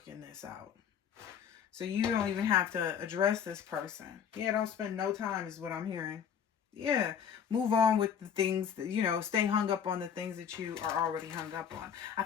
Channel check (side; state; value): right; quieter; 7.9 dB